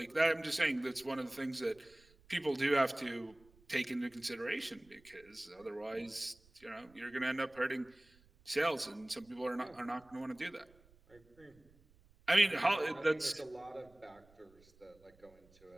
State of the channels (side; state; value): right; noise; rumble, 29 dB below the sound